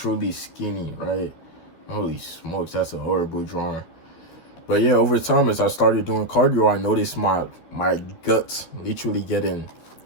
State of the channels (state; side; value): late; right; 12 ms